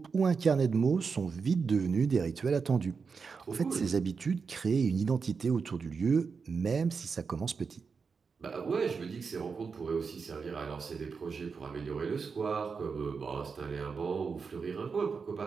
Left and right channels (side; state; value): left; quieter; 5.3 dB